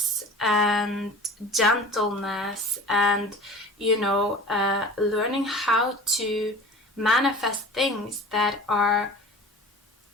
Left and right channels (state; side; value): normal; both; correlation 0.40